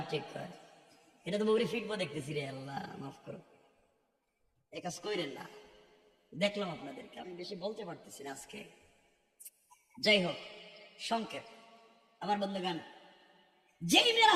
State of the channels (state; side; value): identical; both; correlation 1.00